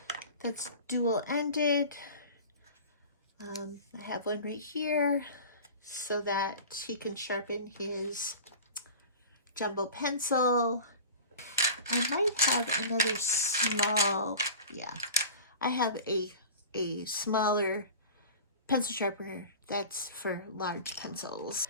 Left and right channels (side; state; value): both; inverted; correlation -0.36